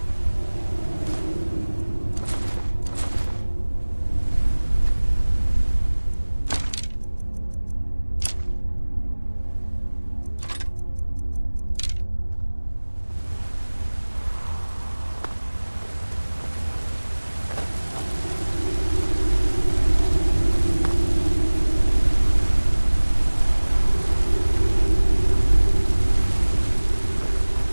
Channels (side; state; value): both; inverted; correlation -1.00